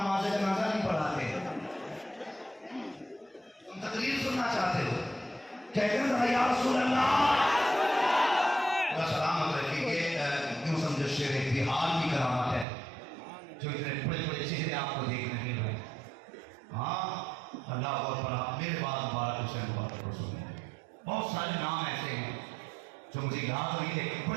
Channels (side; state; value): left; drops out; at 12.7 s